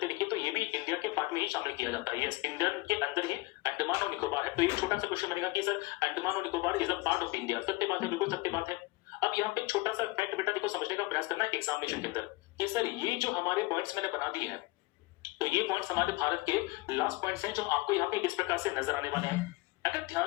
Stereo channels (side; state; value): right; quieter; 21.9 dB